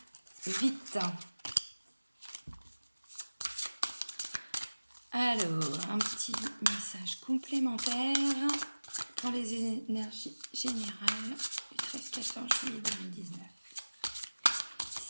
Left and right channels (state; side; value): inverted; both; correlation -1.00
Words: vite. Alors, un petit message complémentaire pour les énergies générales du 13-14 juillet 2019.